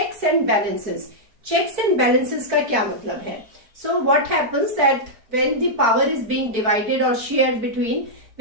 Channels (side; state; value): left; late; 4.5 ms